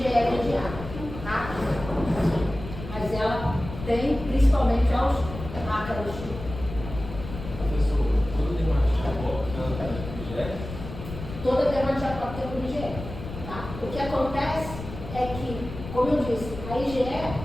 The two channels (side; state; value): left; noise; rumble, 10 dB below the sound